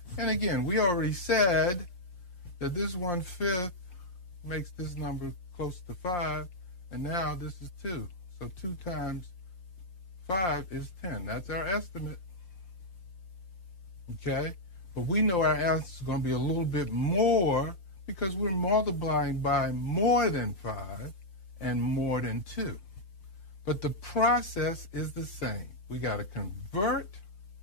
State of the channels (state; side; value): late; right; 5.7 ms